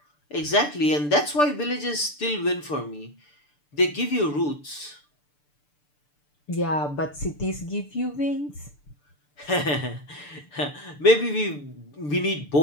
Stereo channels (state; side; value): late; right; 6.8 ms